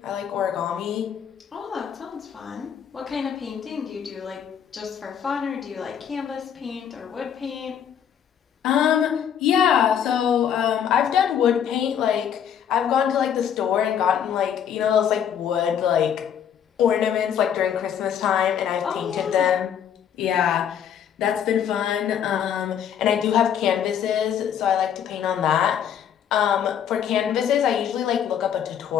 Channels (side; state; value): right; quieter; 8.7 dB